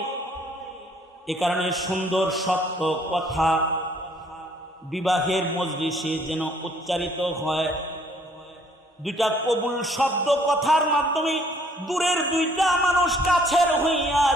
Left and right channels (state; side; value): normal; both; correlation 0.62